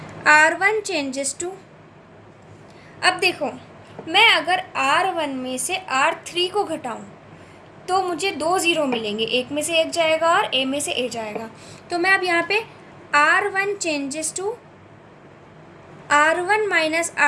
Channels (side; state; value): both; identical; correlation 1.00